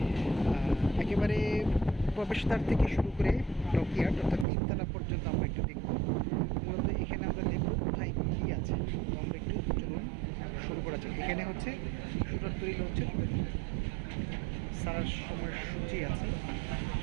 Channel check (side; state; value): left; drops out; at 4.5 s